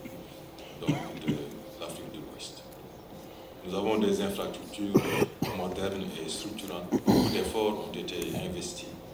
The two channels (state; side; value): identical; both; correlation 1.00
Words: donc, de l'Afrique de l'Ouest. Nous avons des infrastructures modernes et structurantes. Beaucoup d'efforts ont été investis